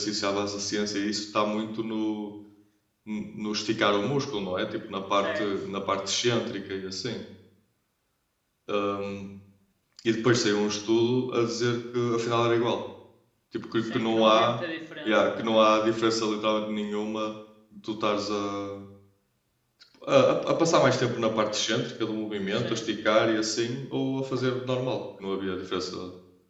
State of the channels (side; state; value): both; identical; correlation 1.00